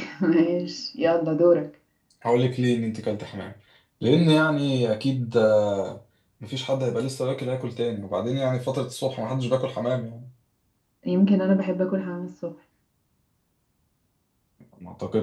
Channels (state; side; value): identical; both; correlation 1.00